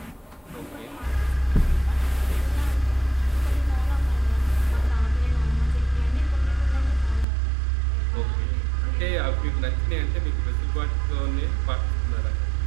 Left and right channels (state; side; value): drops out; left; at 7.2 s